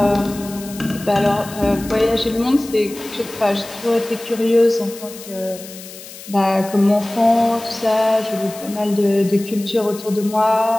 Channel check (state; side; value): noise; left; hiss, 16 dB below the sound